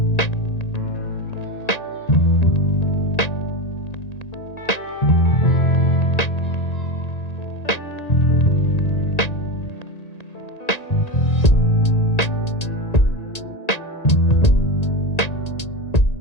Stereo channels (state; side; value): late; right; 1.9 ms